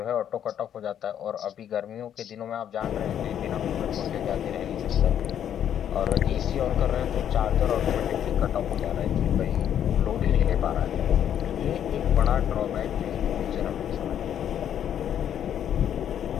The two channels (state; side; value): quieter; right; 9.7 dB